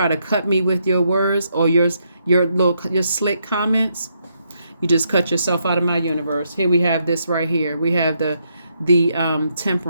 to cut me with your words or your slick comments. You just cut yourself out of my universe. Here we have this right here. We have the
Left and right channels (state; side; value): inverted; both; correlation -0.77